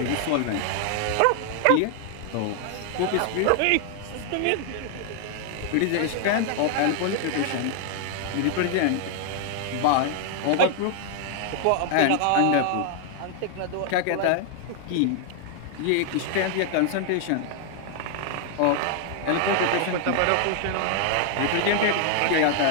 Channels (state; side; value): different; both; correlation 0.00